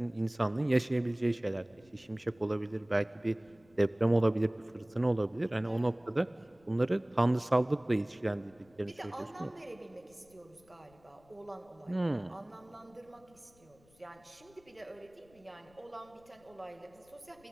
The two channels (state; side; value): noise; left; rumble, 29 dB below the sound